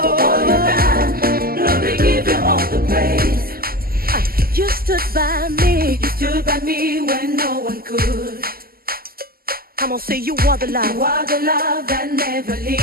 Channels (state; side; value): late; left; 0.43 ms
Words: you've done, Lord, we give you all the praise. You stood by me. You stood by me when no one could. Come on, say you are the You love. are the love that never